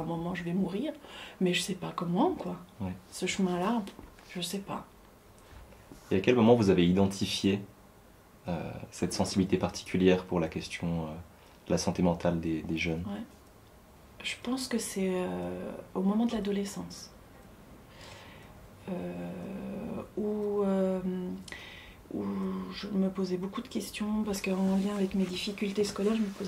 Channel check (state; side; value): identical; both; correlation 1.00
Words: moment, je vais mourir, mais je ne sais pas comment, quoi. Ouais. Ce chemin-là, je ne sais pas. Et à quel moment vous avez identifié cette sensibilité particulière pour la question de la santé mentale des jeunes? Ouais. Je pense que c'est au moment de l'adolescence. Où je me posais beaucoup de questions, parce qu'en lien avec mes difficultés scolaires, je me